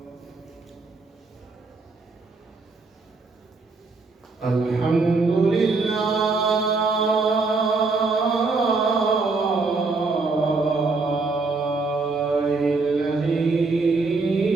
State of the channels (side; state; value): left; quieter; 3.9 dB